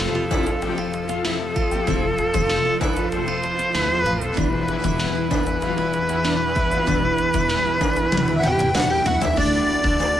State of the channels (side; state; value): both; normal; correlation 0.85